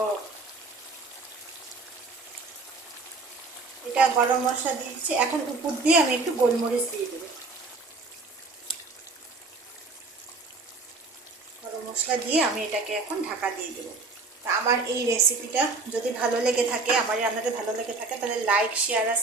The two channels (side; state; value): left; quieter; 3.7 dB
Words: এটা গরম মশলা দিয়েছি, এখন উপর দিয়ে আমি একটু গোলমরিচ দিয়ে দেবো। গরম মশলা দিয়ে আমি এটাকে এখন ঢাকা দিয়ে দেবো। তা আমার এই রেসিপিটা যদি ভালো লেগে থাকে, আমার রান্নাটা ভালো লেগে থাকে, তাহলে লাইক শেয়ার আর